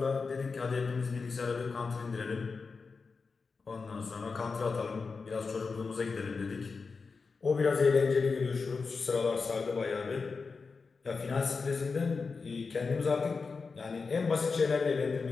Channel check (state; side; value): quieter; right; 4.7 dB